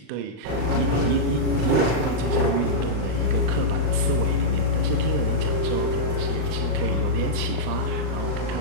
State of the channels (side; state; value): left; late; 40 ms